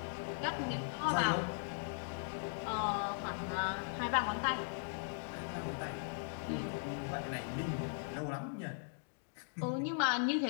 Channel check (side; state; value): right; silent; digital silence